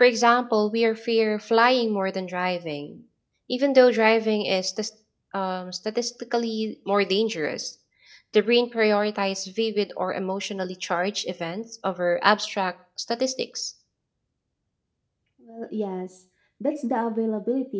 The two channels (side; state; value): both; identical; correlation 1.00